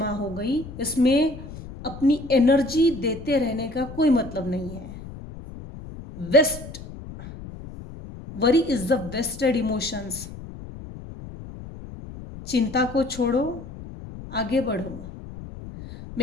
हो गई, इसमें अपनी एनर्जी देते रहने का कोई मतलब नहीं है। Waste worry is the wasted emotions. चिंता को छोड़ो, आगे बढ़ो।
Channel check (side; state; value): left; noise; rumble, 13 dB below the sound